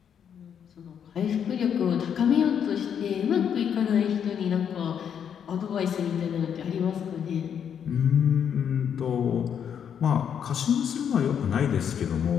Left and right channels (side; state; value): right; quieter; 8.2 dB